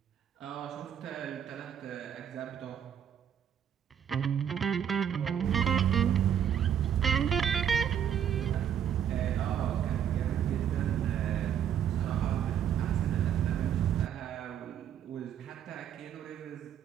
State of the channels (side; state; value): left; quieter; 9.1 dB